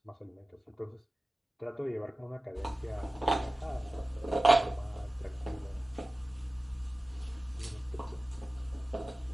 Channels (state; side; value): normal; both; correlation 0.96